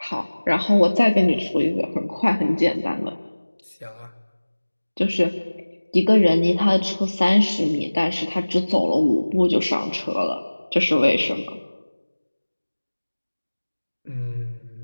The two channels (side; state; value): both; inverted; correlation -1.00